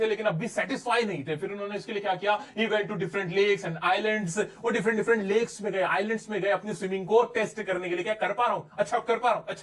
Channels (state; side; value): identical; both; correlation 1.00